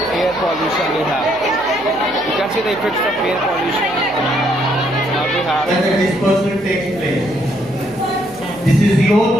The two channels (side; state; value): left; noise; hum, 24 dB below the sound